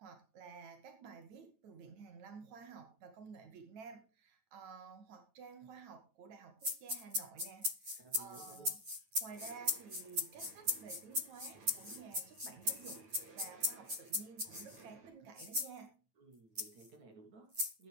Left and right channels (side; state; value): left; late; 9.1 ms